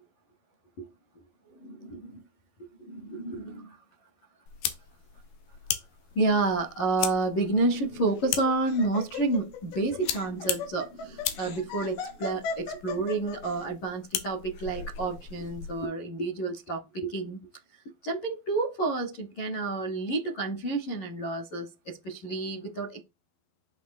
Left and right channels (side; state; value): right; late; 12 ms